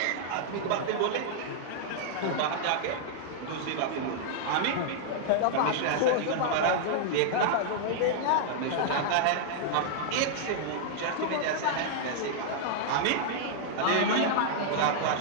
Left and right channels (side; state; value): both; different; correlation -0.01